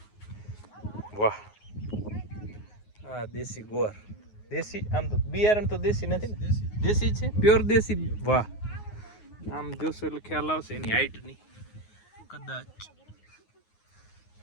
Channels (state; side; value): late; right; 9.5 ms